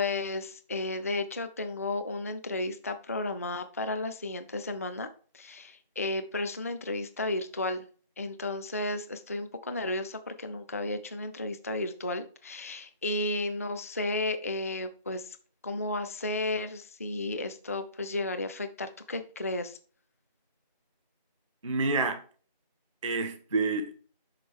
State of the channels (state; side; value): inverted; both; correlation -0.47